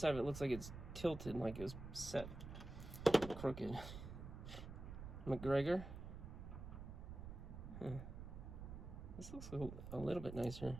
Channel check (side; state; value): right; noise; rumble, 9 dB below the sound